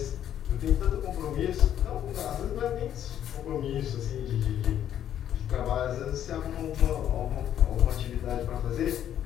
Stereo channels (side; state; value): right; quieter; 10.5 dB